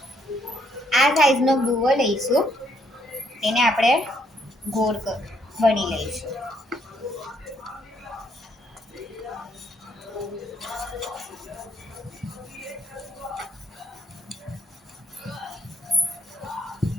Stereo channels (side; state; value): both; normal; correlation 0.70